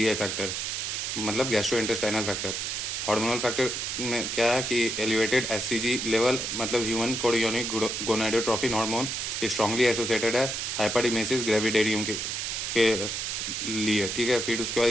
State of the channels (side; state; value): right; noise; hiss, 2 dB below the sound